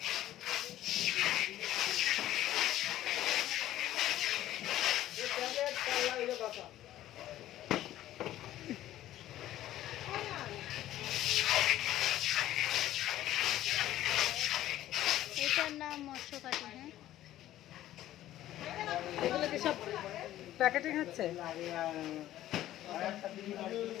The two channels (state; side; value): quieter; right; 13.7 dB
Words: এটার নাম মৎস্যকাটি। হ্যাঁ, এগুলো কি সব প্যাকেটিং হচ্ছে?